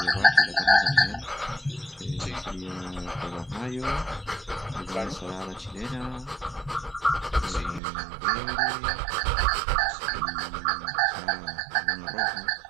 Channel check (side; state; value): left; drops out; at 7.8 s